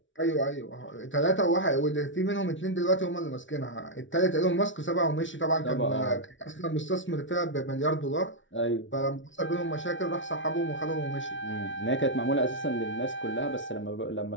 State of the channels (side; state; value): right; late; 0.56 ms